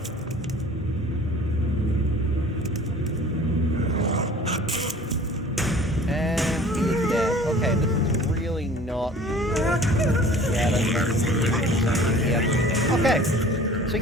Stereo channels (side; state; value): both; normal; correlation 0.47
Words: And he is dead. Okay, this is really not... Yeah, that's right. Okay. So